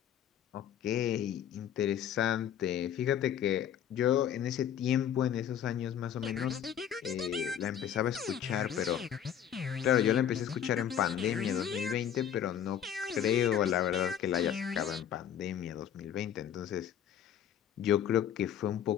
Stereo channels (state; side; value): quieter; right; 9.6 dB